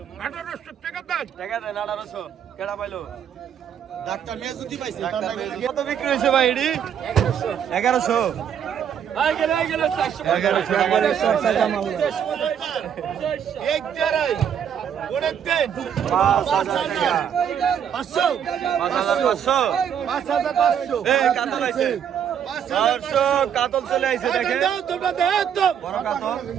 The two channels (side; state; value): left; quieter; 8.6 dB